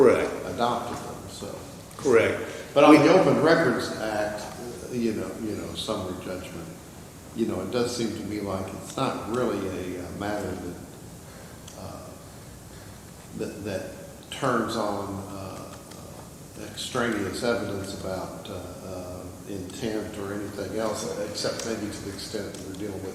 adopted them. So, Correct. but on the Open Records Act, summary judgment, it does seem to me like it's not really a matter that turns on extraneous evidence about intent or anything else, except maybe to the extent that we're dealing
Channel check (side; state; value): both; identical; correlation 1.00